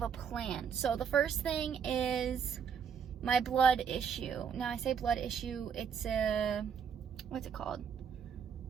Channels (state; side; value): quieter; left; 7.1 dB